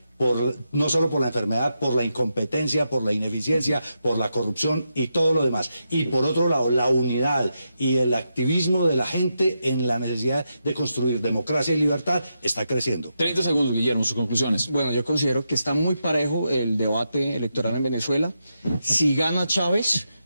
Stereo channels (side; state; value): both; inverted; correlation -0.85